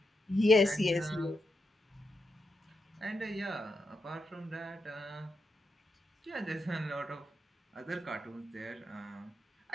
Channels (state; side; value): normal; both; correlation 0.85